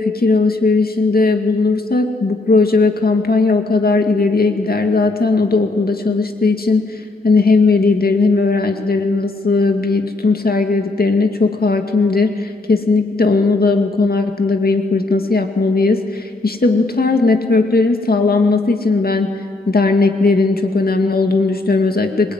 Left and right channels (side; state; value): right; quieter; 3.2 dB